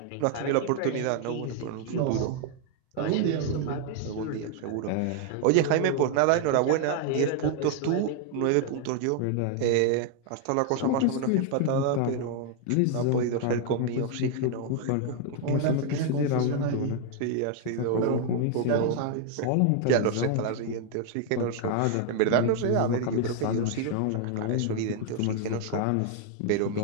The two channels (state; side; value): different; both; correlation 0.00